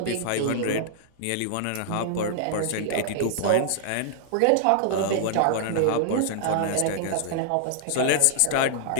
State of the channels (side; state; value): both; different; correlation -0.01